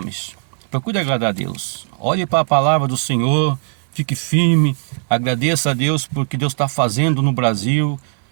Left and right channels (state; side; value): silent; left; 65 dB below the other